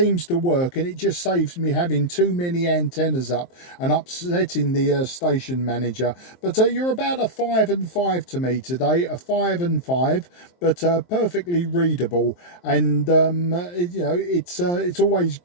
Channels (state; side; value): late; right; 23 ms